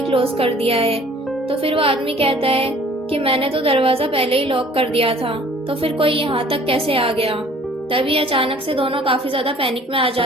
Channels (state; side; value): normal; both; correlation 0.52